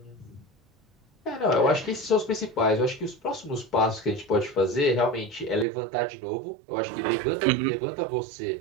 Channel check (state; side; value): drops out; left; at 5.7 s